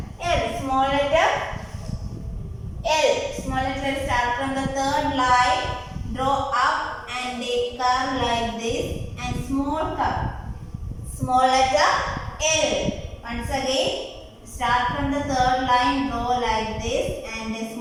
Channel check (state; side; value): identical; both; correlation 1.00